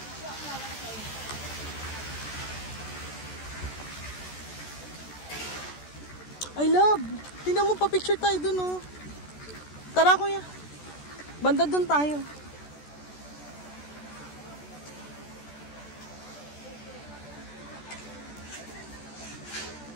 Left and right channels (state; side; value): late; right; 14 ms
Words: I love! Tingnan mo pa picture tayo dun, oh. Tara, kuya. Banda dun tayo.